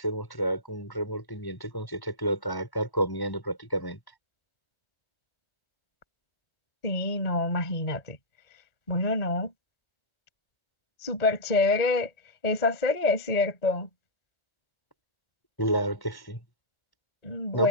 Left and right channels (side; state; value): right; late; 1.8 ms